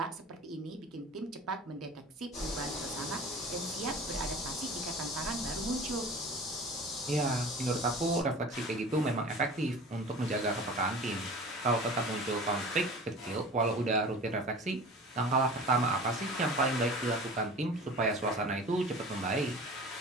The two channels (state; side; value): normal; both; correlation 0.39